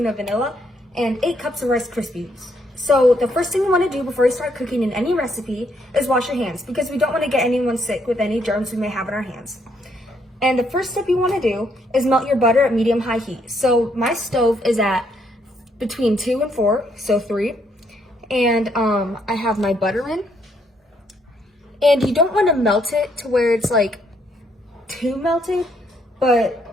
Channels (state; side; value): normal; both; correlation 0.72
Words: of vanilla, and 8 cups of Rice Krispies. So the first thing you want to do before you start cooking in any recipe is wash your hands, because we don't want to get anyone sick with any germs we may have in our hands. And the first step you want to do is melt your butter at medium-high heat. So my stove is at between 2 and 4, so 3. And I have my butter in, and you don't want to melt it to where it's like too melted,